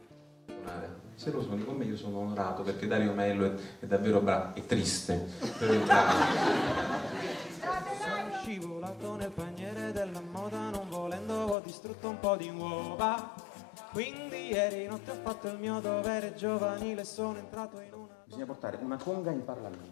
Se lo sono con me io sono onorato perché Dario Mello è davvero bravo, è triste per entrare. Sono scivolato nel paniere della moda, non volendo ho distrutto un po' di uova. Quindi ieri notte ho fatto il mio dovere giovanile, sono entrato in una... Bisogna portare una conga in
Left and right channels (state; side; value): drops out; right; at 11.6 s